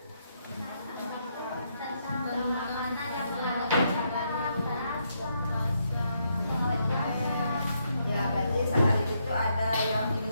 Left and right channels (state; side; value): inverted; both; correlation -0.77